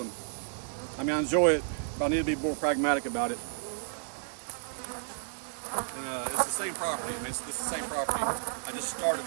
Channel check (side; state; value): left; silent; 57 dB below the other